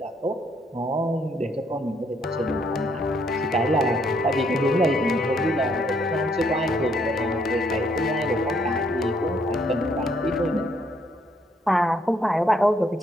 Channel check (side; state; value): both; normal; correlation 0.70